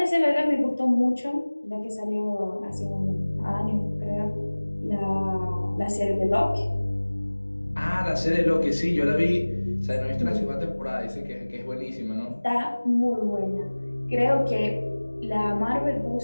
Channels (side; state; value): both; inverted; correlation -1.00